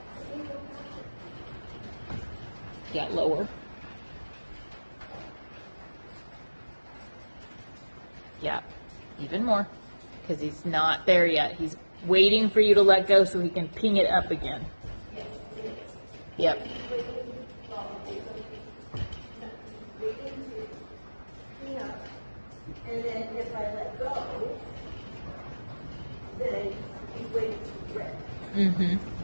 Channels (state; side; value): inverted; both; correlation -1.00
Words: Yeah, lower. Yeah, even more. Because he's not there yet. He's waiting for you to let go so he can ping it up again. Yep. And then if I let go, then he's waiting to rip